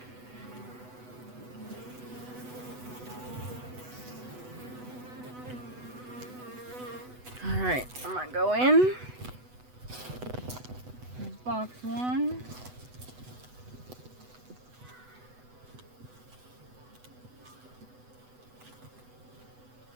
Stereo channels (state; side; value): late; left; 8.0 ms